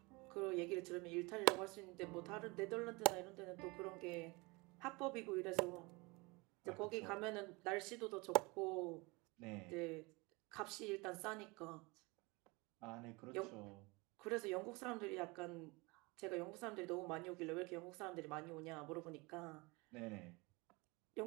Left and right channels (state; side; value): quieter; left; 25.8 dB